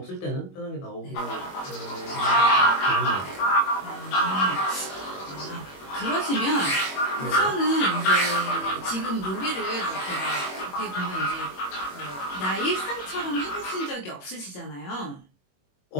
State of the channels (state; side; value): late; right; 21 ms